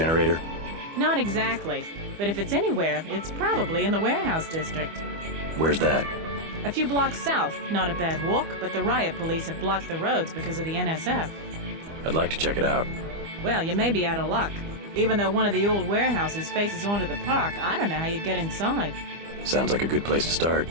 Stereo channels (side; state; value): left; late; 25 ms